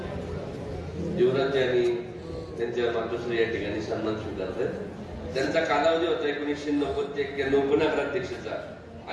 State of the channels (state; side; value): identical; both; correlation 1.00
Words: युवराज आणि त्यांच्या मातोश्री या ठिकाणी सन्मान स्वीकारतात. त्यांचा कालावधी होता 1990 ते 91 उपनगराध्यक्षाचा